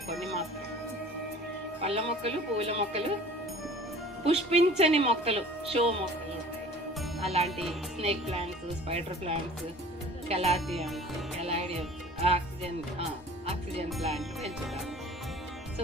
కొన్ని మాత్రం, పళ్ళ మొక్కలు, పువ్వుల మొక్కలు, పుష్పించని మొక్కలు, షో మొక్కలు ఉంటాయి. అలాంటి snake plants, spider plants, calatheas, caladiums, oxygen plant పెంచుతాను.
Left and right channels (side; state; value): both; normal; correlation 0.46